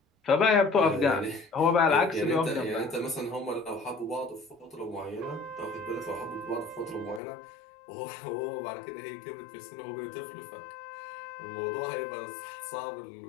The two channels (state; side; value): drops out; right; at 7.2 s